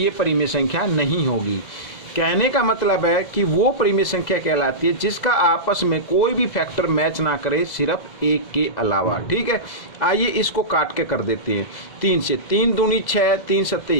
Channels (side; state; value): right; late; 2.0 ms